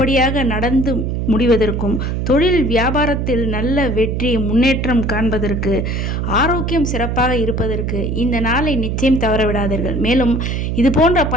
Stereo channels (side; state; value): right; noise; hum, 1 dB below the sound